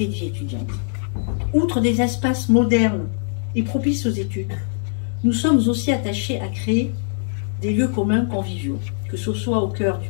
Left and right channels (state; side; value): silent; right; digital silence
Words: de vie étudiante. Outre des espaces modernes et propices aux études, nous sommes aussi attachés à créer des lieux communs conviviaux, que ce soit au cœur du